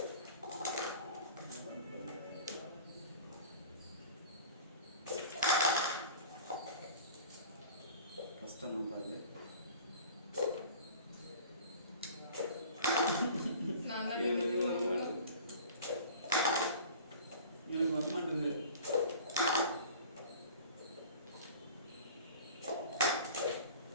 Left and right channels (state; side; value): inverted; both; correlation -0.42